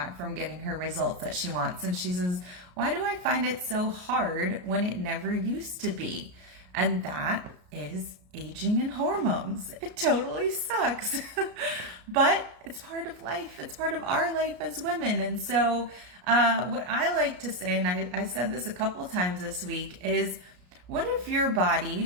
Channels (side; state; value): left; late; 33 ms